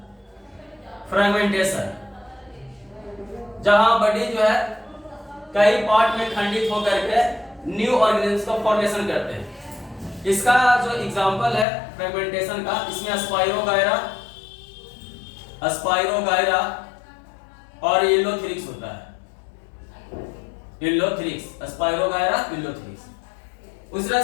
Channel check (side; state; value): right; drops out; at 11.7 s